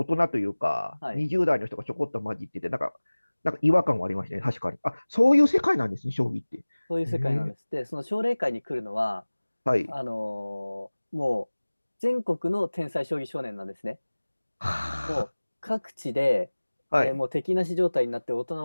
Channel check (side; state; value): both; inverted; correlation -1.00